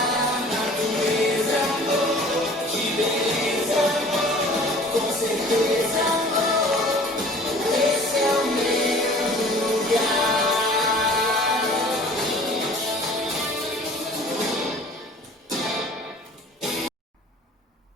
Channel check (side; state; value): both; normal; correlation 0.48